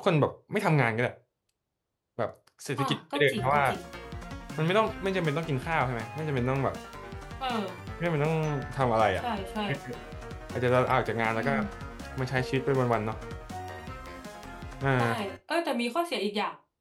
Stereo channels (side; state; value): both; identical; correlation 1.00